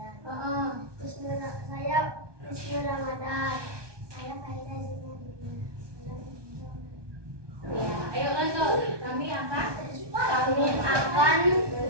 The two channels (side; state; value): left; late; 1.2 ms